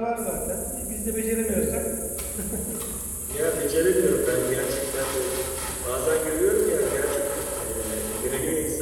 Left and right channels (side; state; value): right; noise; hum, 18 dB below the sound